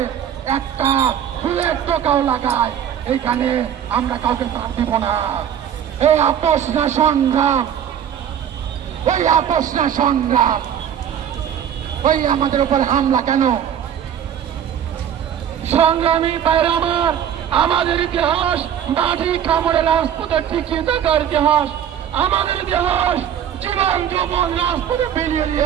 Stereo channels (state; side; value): quieter; left; 9.4 dB